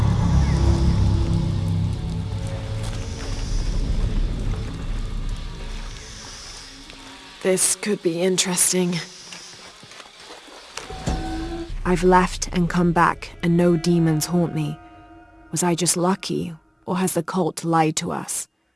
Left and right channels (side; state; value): both; identical; correlation 1.00